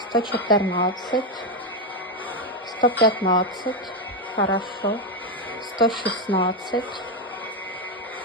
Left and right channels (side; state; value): both; normal; correlation 0.07